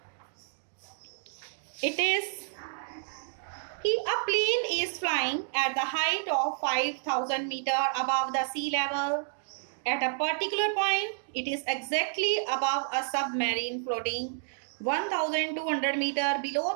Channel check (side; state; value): left; silent; digital silence